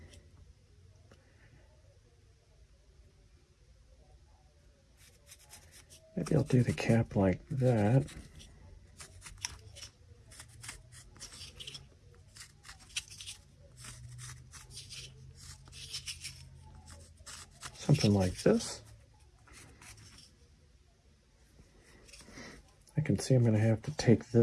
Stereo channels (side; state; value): both; identical; correlation 1.00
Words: Maybe I'll do the cap like that. Something like this. I can see I'm going to have to take